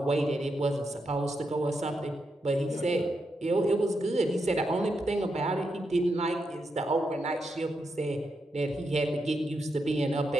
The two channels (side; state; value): both; normal; correlation 0.84